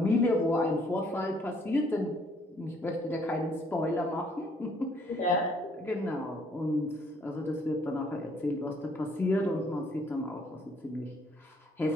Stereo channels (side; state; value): both; normal; correlation 0.65